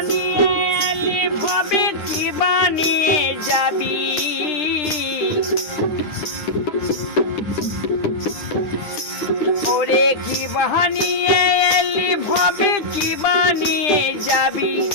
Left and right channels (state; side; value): late; right; 9.9 ms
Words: এলি ভাবে কি বানিয়ে যাবি, ওরে কি বাহানিয়ে এলি ভবে কি বানিয়ে যাবি।